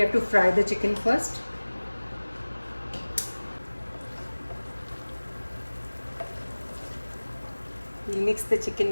to fry the chicken first. We'll mix the chicken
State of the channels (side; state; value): both; inverted; correlation -1.00